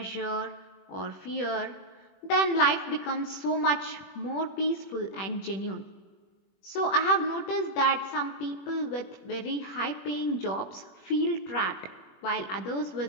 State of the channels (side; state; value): right; late; 21 ms